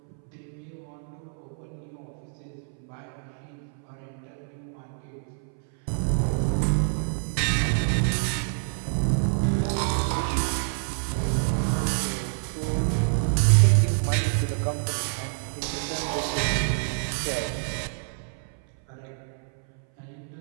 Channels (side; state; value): left; silent; 59 dB below the other